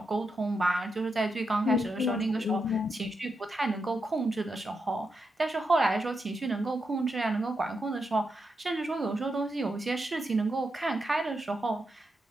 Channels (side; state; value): both; normal; correlation 0.85